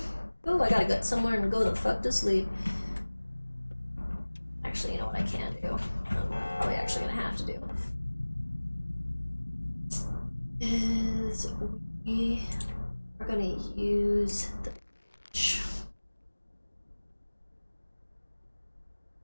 Ooh, I gotta get somewhere and go the fuck to sleep. Actually, you know what I can do? I'm probably actually gonna have to do. Is we are gonna use the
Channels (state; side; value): inverted; both; correlation -1.00